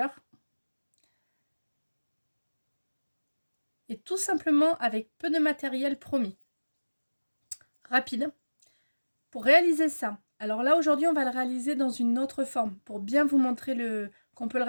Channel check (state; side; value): inverted; both; correlation -1.00